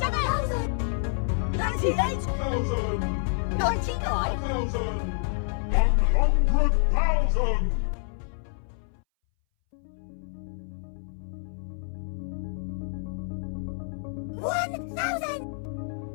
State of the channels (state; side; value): silent; right; 59 dB below the other